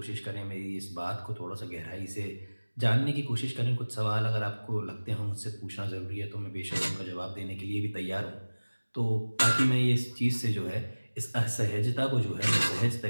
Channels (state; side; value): inverted; both; correlation -1.00